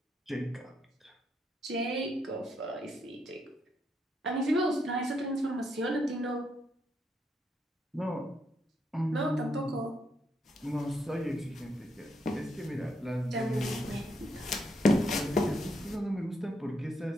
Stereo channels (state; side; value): normal; both; correlation 0.77